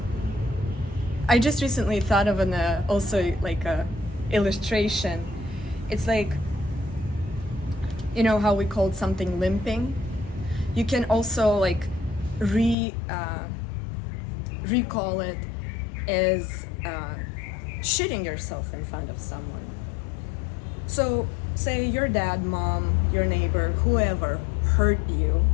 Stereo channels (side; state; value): right; drops out; at 12.8 s